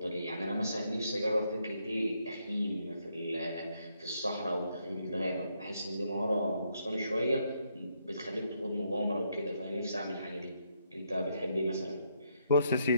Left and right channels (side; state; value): both; inverted; correlation -0.76